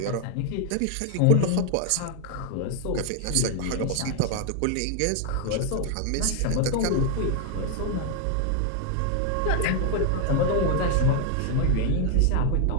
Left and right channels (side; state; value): both; different; correlation 0.00